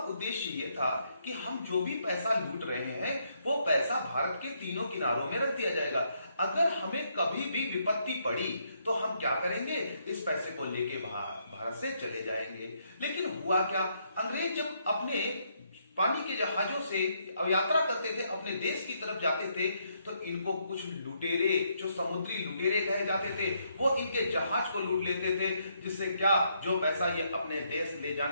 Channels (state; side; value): inverted; both; correlation -0.75